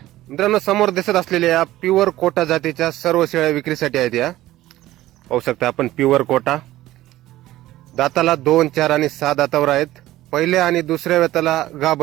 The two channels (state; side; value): quieter; left; 15.5 dB